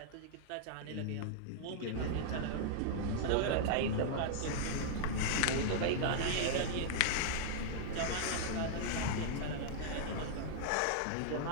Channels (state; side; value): different; both; correlation -0.01